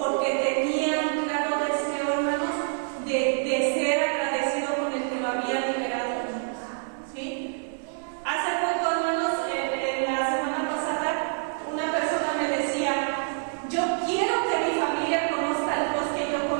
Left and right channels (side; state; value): left; silent; 60 dB below the other